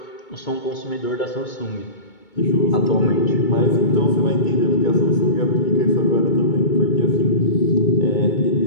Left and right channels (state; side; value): late; right; 2.2 ms